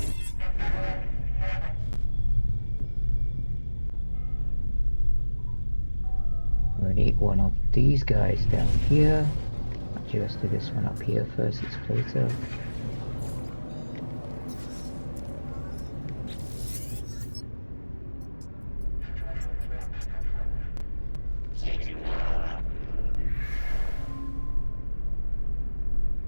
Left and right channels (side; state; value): both; inverted; correlation -1.00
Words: We need one of these guys down here. Actually, let's do this one up here first. It's closer.